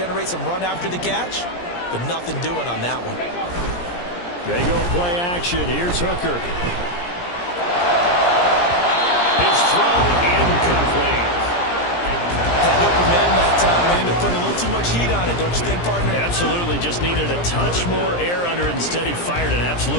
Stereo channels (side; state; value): right; late; 17 ms